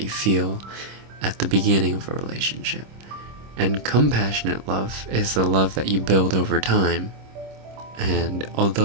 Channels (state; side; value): late; left; 26 ms